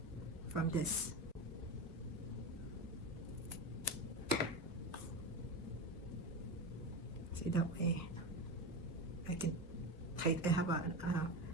from this. See, that way I can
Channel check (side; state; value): both; normal; correlation 0.21